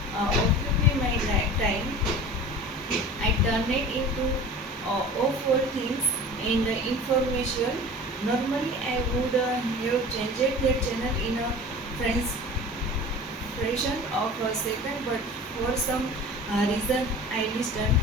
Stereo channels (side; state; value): both; normal; correlation 0.38